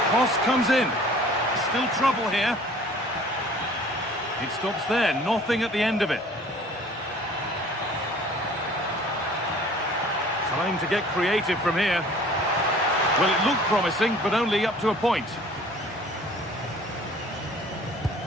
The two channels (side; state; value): both; normal; correlation 0.50